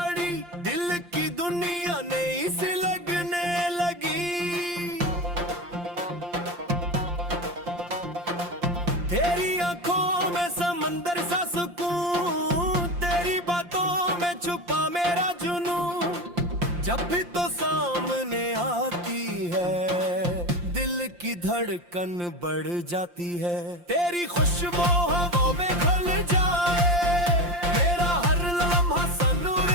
दिल की दुनिया नई सी लगने लगी। तेरी आंखों में समंदर सा सुकून, तेरी बातों में छुपा मेरा जुनून। जब भी तो सामने आती है, दिल की धड़कन बढ़ जाती है। तेरी खुशबू हवा में घुल जाए, मेरा हर लम्हा सन उड़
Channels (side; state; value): left; late; 5.7 ms